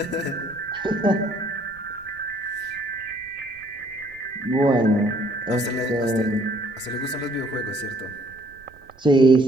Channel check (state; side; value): noise; right; rumble, 27 dB below the sound